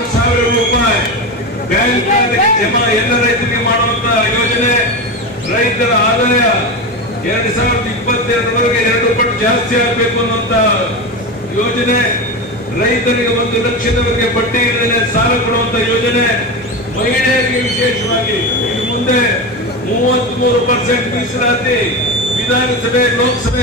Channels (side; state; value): both; normal; correlation 0.20